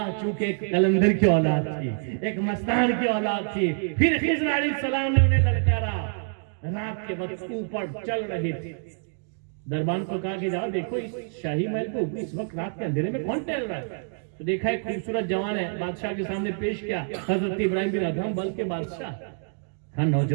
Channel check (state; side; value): silent; left; digital silence